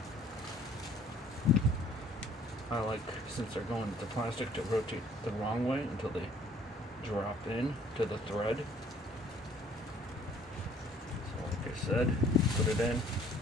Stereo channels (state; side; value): normal; both; correlation 0.57